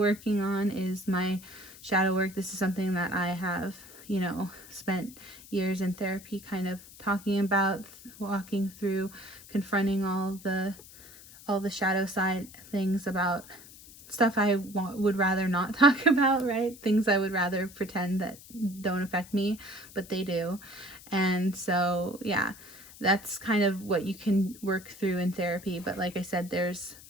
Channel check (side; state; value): left; noise; hiss, 19 dB below the sound